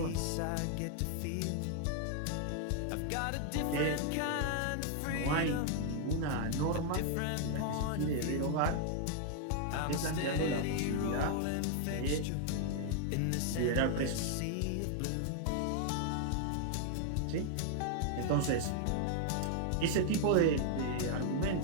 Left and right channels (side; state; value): both; different; correlation -0.01